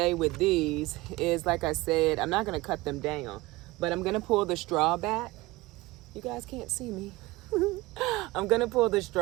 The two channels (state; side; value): quieter; left; 20.6 dB